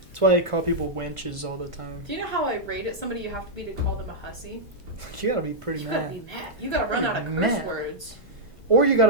That's why I call people wenches all the time. Do you know how irate at somebody you have to be to call them a hussy? You gotta be pretty You mad. gotta be mad. You gotta run out of curse Mad. words. Or you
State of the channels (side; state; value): both; normal; correlation -0.07